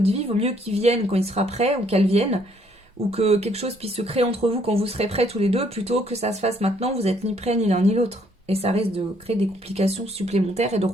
vie. Vaut mieux qu'il vienne quand il sera prêt ou qu'elle vienne, ou que quelque chose puisse se créer entre vous quand vous serez prêts tous les deux, plutôt que ça se fasse maintenant, vous n'êtes ni prêts ni l'un ni l'autre. Et ça risque de créer des complications supplémentaires et de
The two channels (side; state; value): both; normal; correlation 0.67